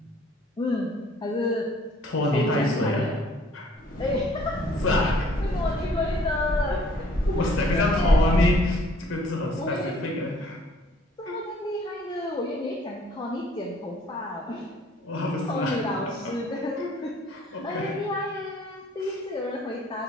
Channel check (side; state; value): both; normal; correlation 0.58